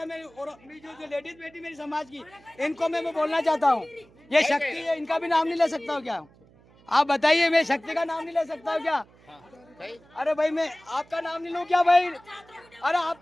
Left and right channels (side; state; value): right; noise; hum, 28 dB below the sound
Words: में और जो लेडीज बेटी मेरी समाज की, इनको मैं बोलना चाहता हूँ, ये शक्ति है, इनका भी नाम नहीं ले सकता हूँ क्या? आप बताइए, मैं शक्ति का नाम नहीं ले सकता हूँ क्या? अरे भाई मैं आपका नाम नहीं लूँ क्या भाई? अरे